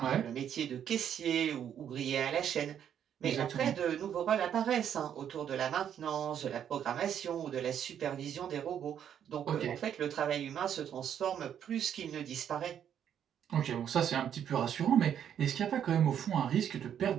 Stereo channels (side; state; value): left; quieter; 9.2 dB